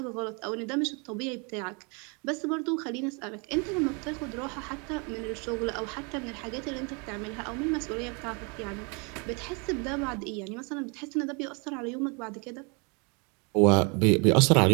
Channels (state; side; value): quieter; left; 32.9 dB